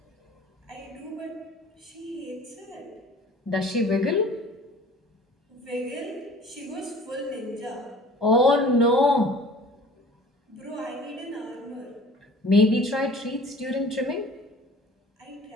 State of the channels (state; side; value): normal; both; correlation 0.47